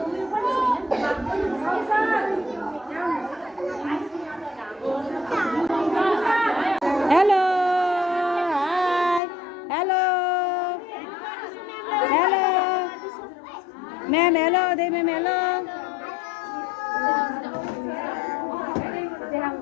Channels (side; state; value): right; drops out; at 9.2 s